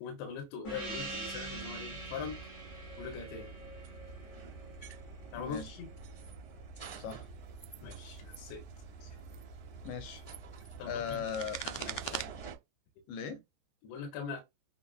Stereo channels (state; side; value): late; right; 14 ms